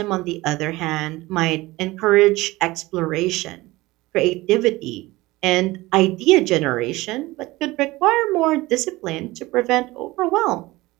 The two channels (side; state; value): left; quieter; 19.9 dB